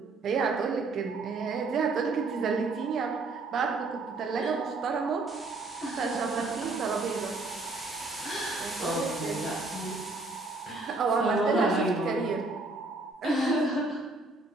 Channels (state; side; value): quieter; left; 3.4 dB